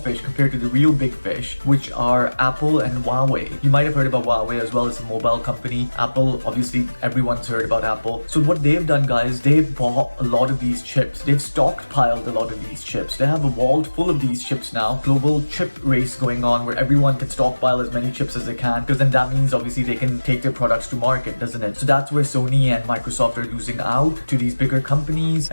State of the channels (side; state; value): both; inverted; correlation -1.00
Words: compared to the real big fish, which are Apple and Huawei. You might have heard about Huawei as well as a mobile company. Apple, obviously everyone's heard about Apple. So what they've done guys, they've bought a lot of these chips. They've stockpiled a lot of these chips. They have a vault full of these chips now. Global chip race going on where everyone can stockpile as many chips as they can, because then that means obviously they can take their products to market, doesn't it? So that's where Sony and Microsoft are losing out to these bigger companies.